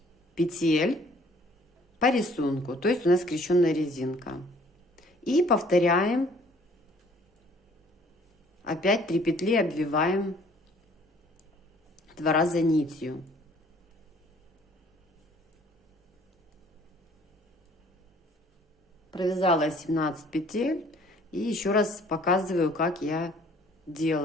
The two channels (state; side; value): normal; both; correlation 0.57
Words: петель по рисунку, то есть у нас скрещенная резинка. И повторяем. Опять 3 петли обвиваем 2 раза нитью. Провязала 17 петель. И еще раз показываю, как я